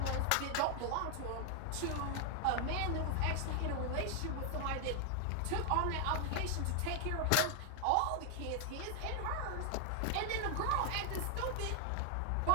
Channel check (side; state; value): both; different; correlation 0.00